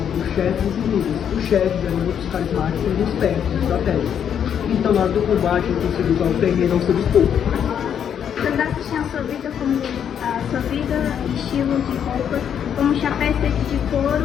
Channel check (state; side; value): quieter; right; 8.6 dB